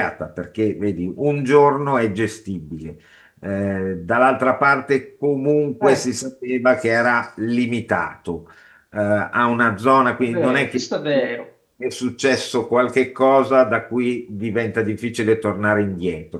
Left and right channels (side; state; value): both; identical; correlation 1.00